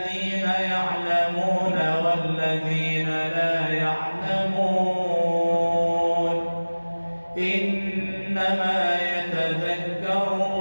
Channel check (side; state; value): both; inverted; correlation -1.00